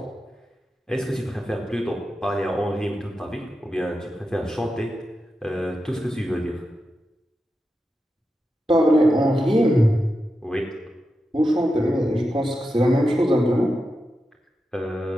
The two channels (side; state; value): both; normal; correlation 0.89